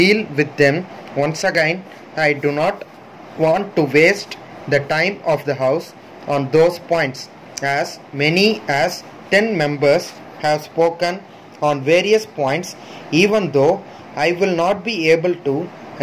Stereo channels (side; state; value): both; identical; correlation 1.00